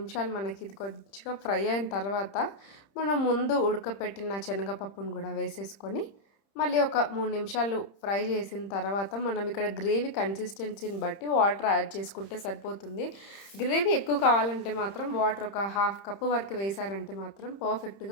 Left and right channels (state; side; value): late; right; 30 ms